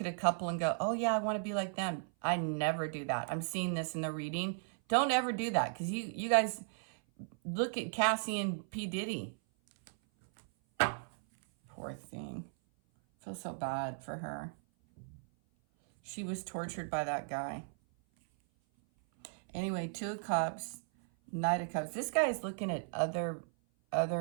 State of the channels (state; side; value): silent; left; 54 dB below the other